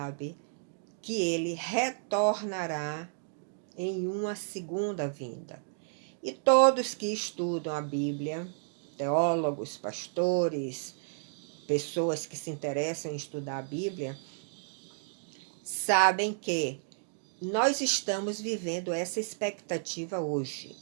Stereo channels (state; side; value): silent; left; digital silence